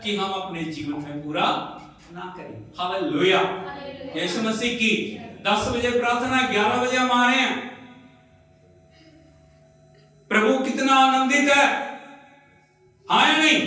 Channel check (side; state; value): both; identical; correlation 1.00